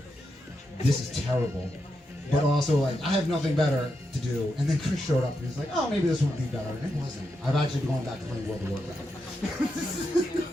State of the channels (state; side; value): normal; both; correlation 0.85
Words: this is terrible. But also like, I have nothing better to do. And then Chris showed up and he's like, oh, maybe this would be better. And it wasn't. I've actually been going back to playing World of Warcraft.